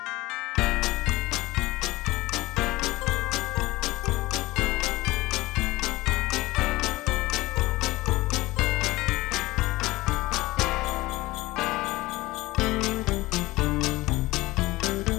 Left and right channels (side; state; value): right; quieter; 19.6 dB